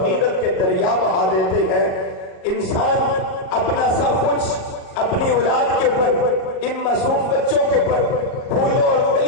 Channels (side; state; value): right; late; 37 ms